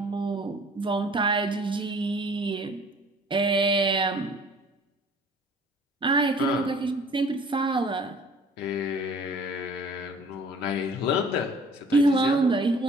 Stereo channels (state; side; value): normal; both; correlation 0.51